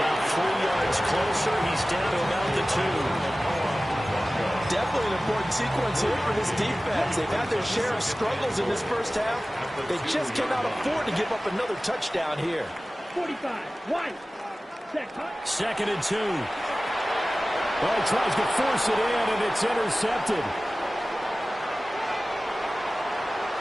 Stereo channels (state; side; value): normal; both; correlation 0.97